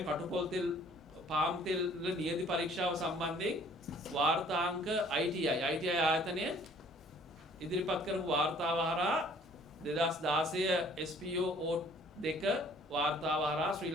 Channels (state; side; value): normal; both; correlation 0.56